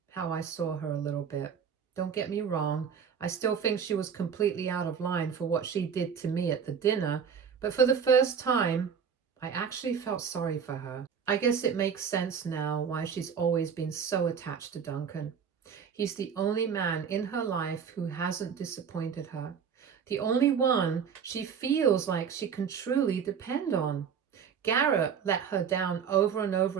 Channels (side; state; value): left; quieter; 7.1 dB